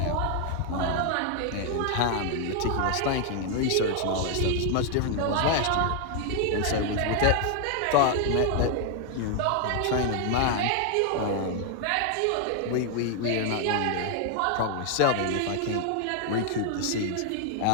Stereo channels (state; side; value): different; both; correlation 0.00